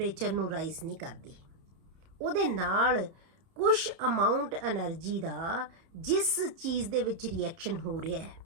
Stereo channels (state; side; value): late; left; 30 ms